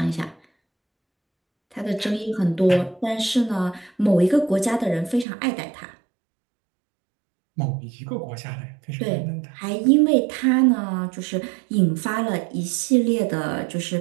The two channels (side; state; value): left; drops out; at 5.2 s